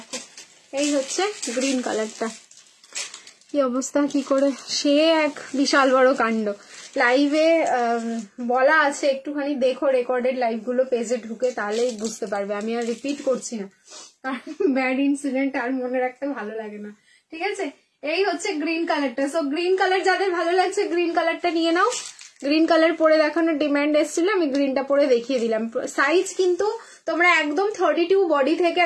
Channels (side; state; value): both; identical; correlation 1.00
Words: এই হচ্ছে গ্রিন কালারটা। কি অবস্থা, কি করে, সে এক বিশাল বড় কাণ্ড। লাইভে বলা আছে, একটুখানি দেখো রেকর্ডেড লাইভগুলো পেজে ঢুকে, তাহলেই বুঝতে পারবে। আমি আর রিপিট করছি না, কারণ ব্যাড ইনসিডেন্ট আর মনে রাখতে ভালো লাগে না। ঠিক আছে, এই হচ্ছে গ্রিন কালারটা। সো গ্রিন কালার যাদের ভালো লাগছে গ্রিন কালারটা নিয়ে নাও। গ্রিন কালার পরে দেখানোর ডিমান্ড এসেছিল, আমি গ্রিনটা পরে দেখিয়ে দিলাম। সাইজ কিন্তু তোমরা একদম 32 বডি থেকে